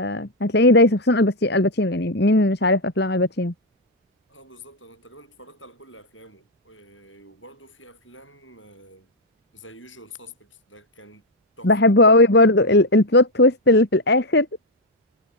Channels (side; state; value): both; normal; correlation 0.01